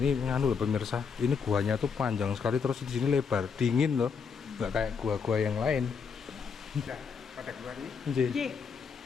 nganu loh pemirsa. Ini guanya tuh panjang sekali terus di sini lebar, dingin loh. Nggak kayak gua-gua yang lain. Sudah pada keluar nih. Nggih. J.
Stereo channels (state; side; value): quieter; right; 6.0 dB